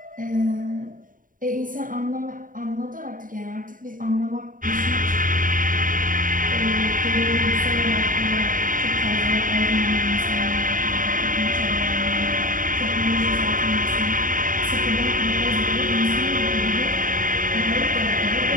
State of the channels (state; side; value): late; left; 0.39 ms